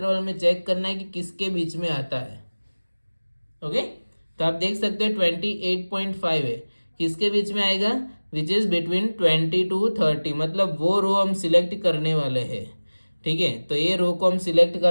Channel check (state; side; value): inverted; both; correlation -1.00